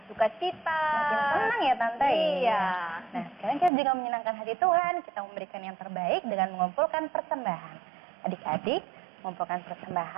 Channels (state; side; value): drops out; left; at 3.7 s